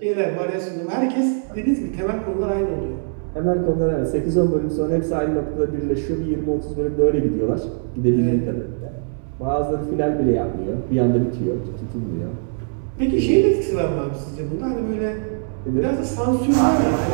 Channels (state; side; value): silent; left; digital silence